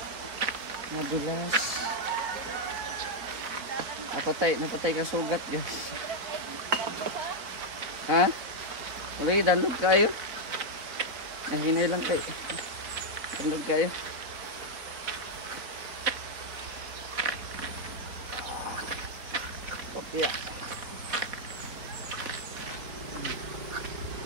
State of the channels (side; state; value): left; late; 3.9 ms